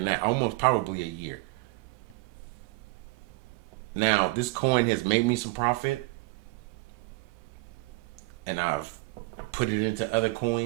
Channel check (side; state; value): left; quieter; 22.7 dB